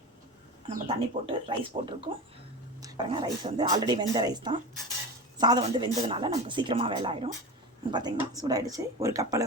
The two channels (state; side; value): normal; both; correlation 0.27